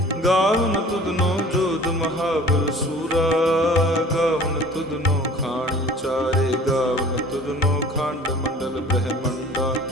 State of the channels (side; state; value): both; normal; correlation 0.47